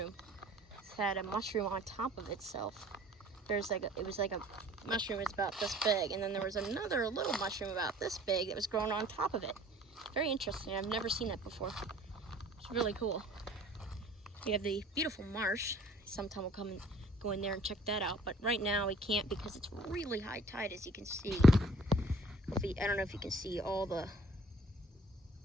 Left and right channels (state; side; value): normal; both; correlation 0.53